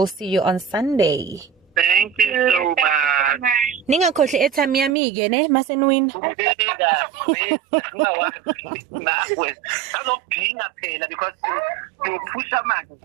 see you on Sunday. Thank you so much. Ningakhohle airtime yami ke ne masenwin.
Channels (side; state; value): left; drops out; at 5.0 s